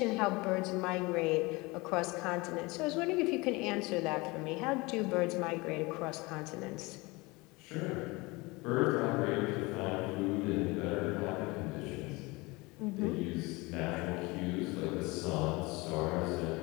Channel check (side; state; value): right; quieter; 24.2 dB